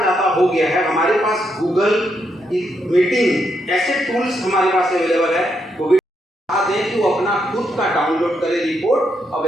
हो गया है, हमारे पास गूगल मीटिंग ऐसे टूल्स हमारे पास अवेलेबल है, वो भी दें कि वो अपना खुद का डाउनलोड करे रिपोर्ट और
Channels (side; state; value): both; normal; correlation 0.79